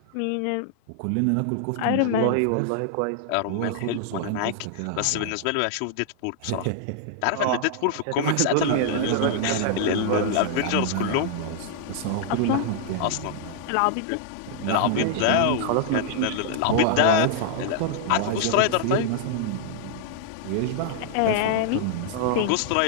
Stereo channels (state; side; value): different; both; correlation -0.01